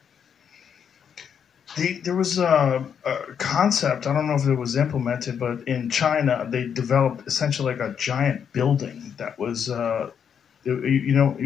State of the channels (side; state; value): right; quieter; 7.7 dB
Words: There was a concept, I don't know if it was implemented, but in China, they developed essentially like a giant building that was, you